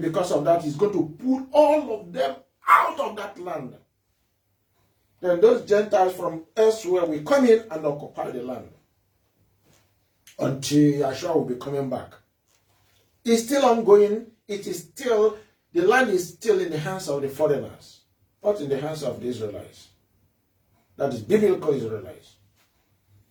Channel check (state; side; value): identical; both; correlation 1.00